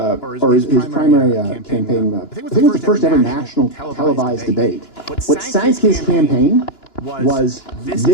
his primary campaign, I think it was the first ever national televised debate. What sank his campaign was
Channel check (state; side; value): late; right; 2.9 ms